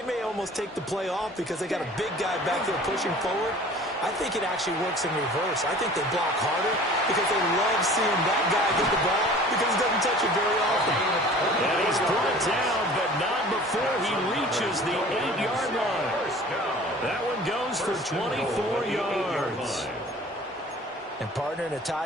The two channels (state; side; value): normal; both; correlation 0.46